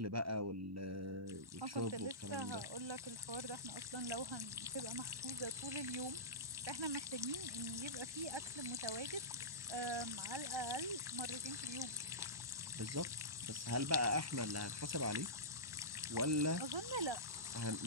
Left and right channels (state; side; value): late; left; 1.1 ms